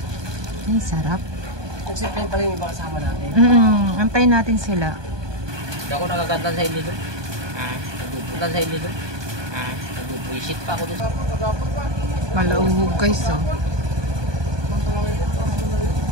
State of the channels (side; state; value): left; late; 1.2 ms